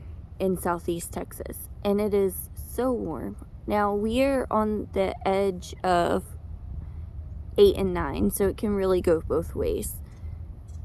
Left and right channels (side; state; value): both; identical; correlation 1.00